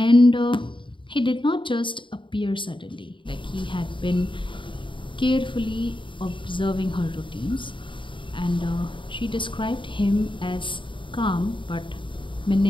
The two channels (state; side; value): late; right; 0.24 ms